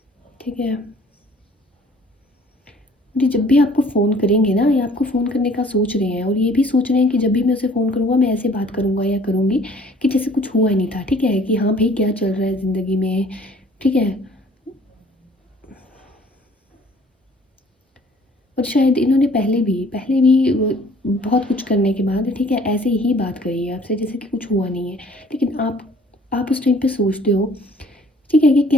ठीक है। जी, जब भी आपको फ़ोन करेंगे ना, या आपको फ़ोन करने का सोच रहे हैं और ये भी सोच रहे हैं कि जब भी मैं उसे फ़ोन करूँगा मैं ऐसे बात करूँगा या करूँगी कि जैसे कुछ हुआ ही नहीं था, ठीक है? कि हाँ भाई, क्या चल रहा है ज़िंदगी में, ठीक है? और शायद इन्होंने पहले भी बहुत कुछ करने के बाद, ठीक है, ऐसे ही बात करी है आपसे जैसे कि कुछ हुआ नहीं है। लेकिन आप उस टाइम पे सोचते हो, ठीक है, ये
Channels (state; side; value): normal; both; correlation 0.55